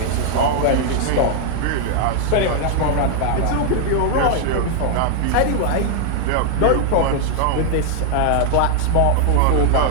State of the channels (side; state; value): both; different; correlation 0.00